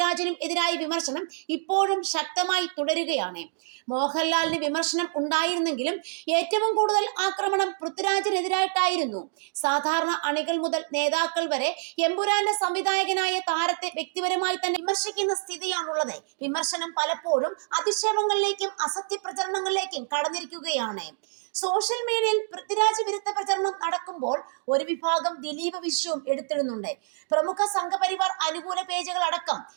എതിരായ വിമർശനം ഇപ്പോഴും ശക്തമായി തുടരുകയാണ്. മോഹൻലാലിന് വിമർശനം ഉണ്ടായിരുന്നെങ്കിലും ഏറ്റവും കൂടുതൽ ആക്രമണം പൃഥ്വിരാജിനെതിരായിട്ടായിരുന്നു. സാധാരണ അണികൾ മുതൽ നേതാക്കൾ വരെ എമ്പുരാന്റെ സംവിധായകനായ താരത്തെ വ്യക്തിപരമായി തന്നെ വിമർശിക്കുന്ന സ്ഥിതിയാണുള്ളത്. വിമർശനം പലപ്പോഴും അധിക്ഷേപങ്ങളിലേക്കും അസത്യ പ്രചരണങ്ങളിലേക്കും കടന്നിരിക്കുകയാണ്. സോഷ്യൽ മീഡിയയിൽ പൃഥ്വിരാജ് വിരുദ്ധ പ്രചരണം നടക്കുമ്പോൾ ഒരു വിഭാഗം ദിലീപ് വിഷയവും എടുത്തിടുന്നുണ്ട്. പ്രമുഖ സംഘപരിവാർ അനുകൂല പേജുകൾ അടക്കം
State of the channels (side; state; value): left; silent; digital silence